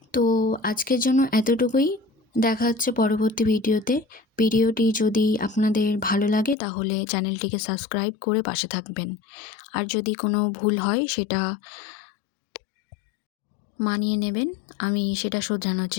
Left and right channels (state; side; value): drops out; right; at 6.6 s